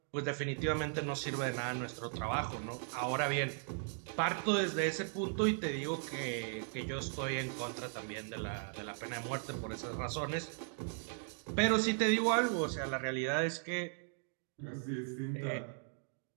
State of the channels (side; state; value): left; silent; 53 dB below the other